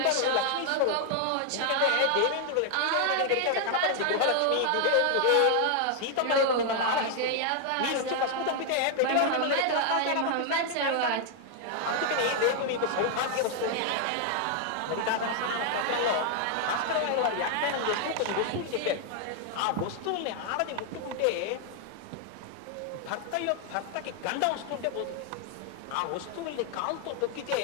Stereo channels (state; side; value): different; both; correlation 0.00